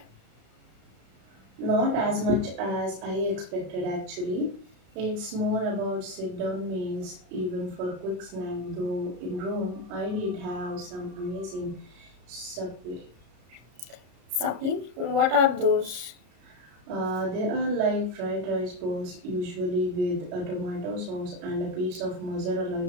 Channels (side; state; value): left; late; 33 ms